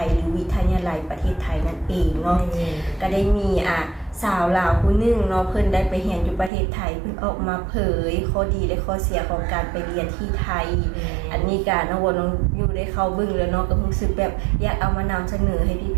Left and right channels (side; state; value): left; drops out; at 6.5 s